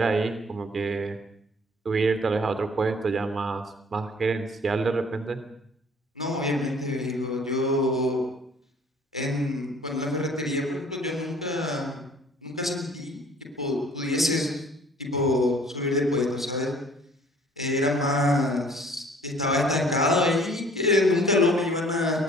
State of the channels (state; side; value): normal; both; correlation 0.54